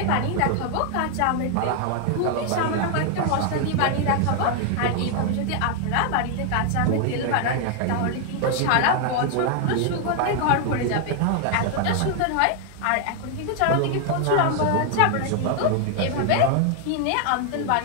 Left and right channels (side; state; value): both; different; correlation 0.00